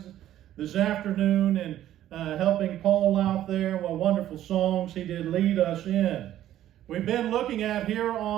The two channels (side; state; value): left; quieter; 12.5 dB